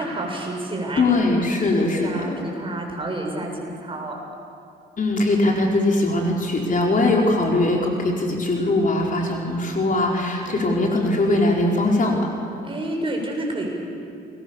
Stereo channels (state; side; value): normal; both; correlation 0.59